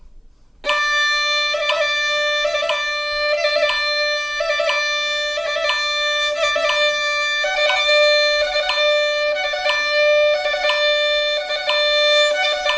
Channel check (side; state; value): both; identical; correlation 1.00